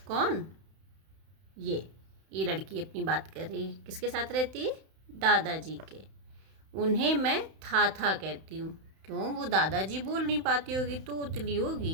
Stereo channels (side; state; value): left; late; 31 ms